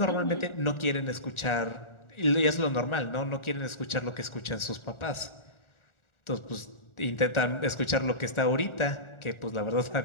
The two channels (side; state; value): right; late; 1.4 ms